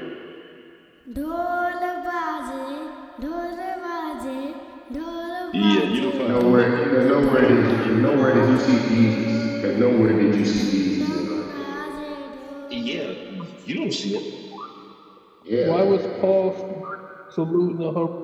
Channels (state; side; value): identical; both; correlation 1.00